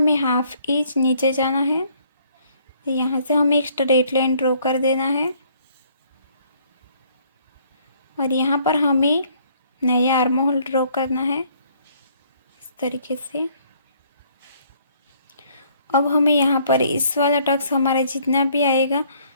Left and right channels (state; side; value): inverted; both; correlation -0.63